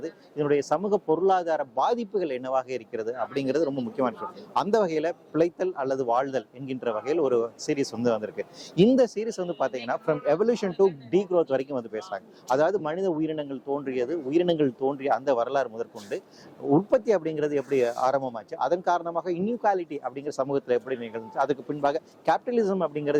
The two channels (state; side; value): identical; both; correlation 1.00